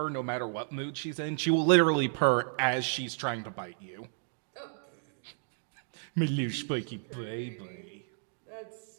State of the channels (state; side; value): silent; left; digital silence